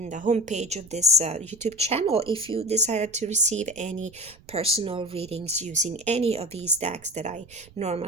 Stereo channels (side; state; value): right; noise; rumble, 25 dB below the sound